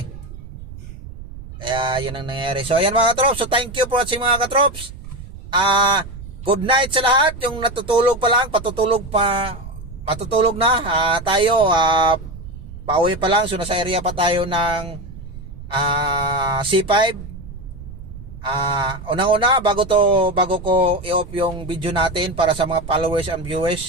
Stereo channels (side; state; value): right; noise; rumble, 13 dB below the sound